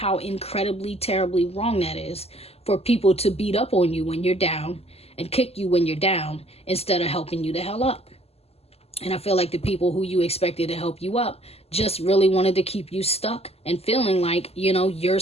incredibly, terribly wrong that is for people to beat up on you when you're down and kick you when you're down instead of helping you the hell up. And I feel like the people who you expected to help you up just really wanted to keep you stuck and feeling like, you know, you're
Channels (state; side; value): late; right; 0.29 ms